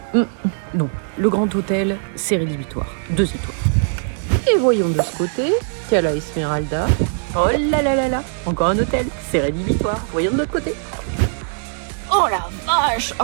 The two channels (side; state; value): left; silent; 66 dB below the other